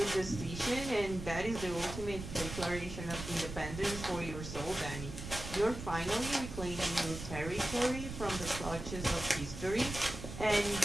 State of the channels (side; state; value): right; noise; rumble, 9 dB below the sound